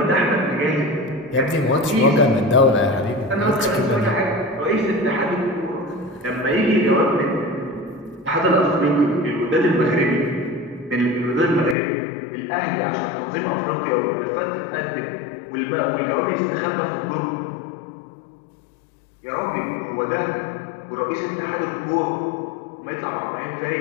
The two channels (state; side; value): drops out; right; at 11.8 s